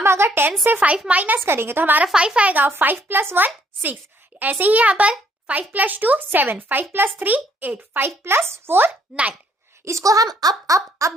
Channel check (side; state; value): both; normal; correlation 0.67